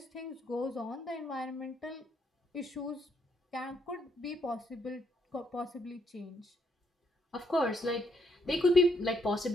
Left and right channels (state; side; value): normal; both; correlation 0.73